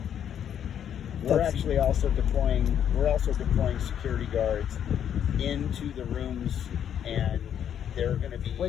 We're actually also deploying security guards into the rooms, and they're going to be...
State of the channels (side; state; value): right; quieter; 9.3 dB